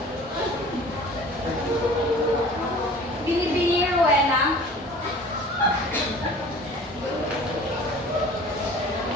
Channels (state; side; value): normal; both; correlation 0.45